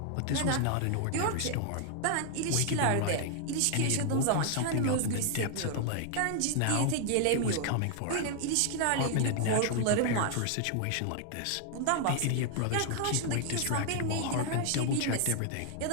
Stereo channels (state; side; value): different; both; correlation 0.00